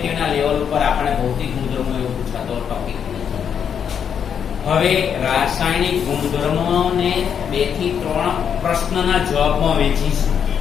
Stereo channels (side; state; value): right; quieter; 7.8 dB